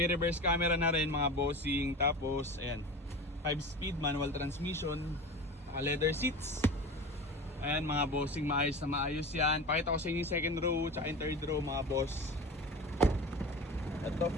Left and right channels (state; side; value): normal; both; correlation 0.32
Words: reverse camera na rin mga bossing. Tapos ayan, 5-speed manual transmission. Naka leather seats. Ayan mga bossing, maayos na maayos yan. Pakita ko sa inyo yung second row tsaka yung third row mga boss. Ito,